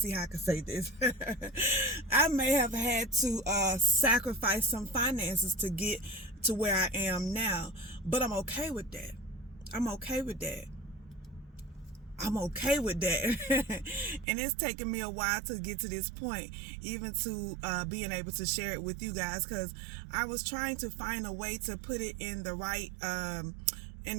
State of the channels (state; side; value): drops out; left; at 14.2 s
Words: how I can say this. I may have had to sacrifice some finances to get to where I am now. But I'm okay with that. I'm okay with that. I'm okay with that. And it's taken me a while to get to this point, even to being able to share it with you guys, because I was trying to find a way to put it in the right